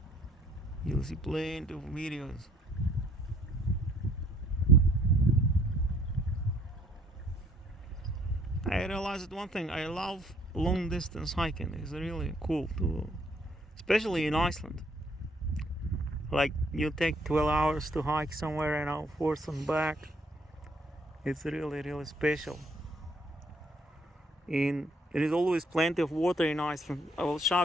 You'll see plenty of videos. I realized one thing, I love long distance hiking. It's really cool too, especially in Iceland. Like you take 12 hours to hike somewhere, forth and back. It's really special. And there is always plenty of water in Iceland. I will show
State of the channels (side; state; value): both; normal; correlation 0.64